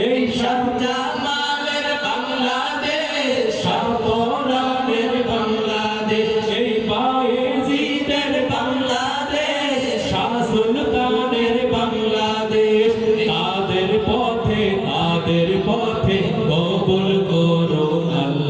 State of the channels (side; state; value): right; noise; rumble, 30 dB below the sound